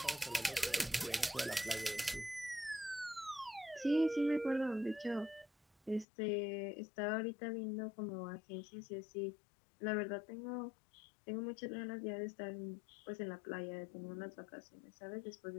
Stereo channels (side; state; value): right; drops out; at 6.1 s